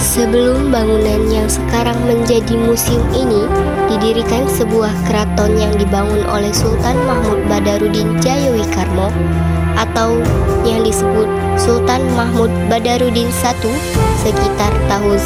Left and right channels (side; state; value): both; identical; correlation 1.00